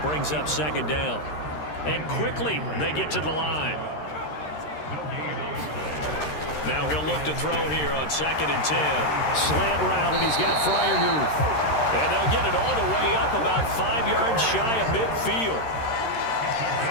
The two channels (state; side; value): late; right; 13 ms